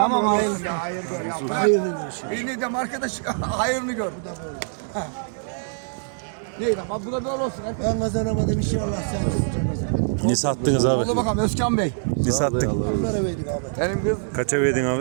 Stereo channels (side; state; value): left; silent; digital silence